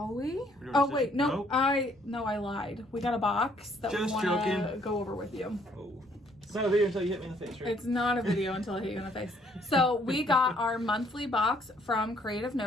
we? Oh, wait, no, I lied. We got a box that we want to go over with you. Oh. It's not a video until you hit me in the face, right? It's not a video until I hit you in the face. So we got our monthly box from Creative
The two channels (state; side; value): normal; both; correlation 0.65